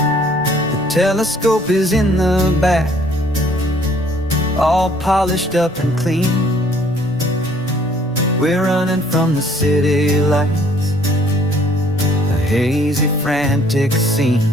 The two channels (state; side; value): noise; left; rumble, 26 dB below the sound